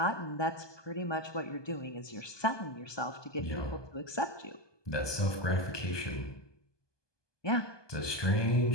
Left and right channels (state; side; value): late; right; 1.2 ms